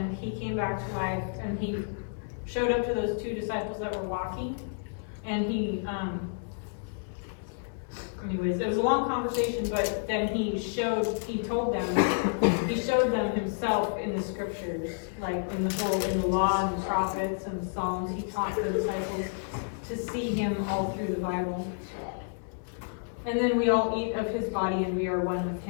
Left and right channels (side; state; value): right; silent; 58 dB below the other